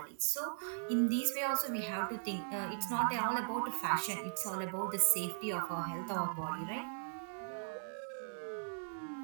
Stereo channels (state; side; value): silent; left; digital silence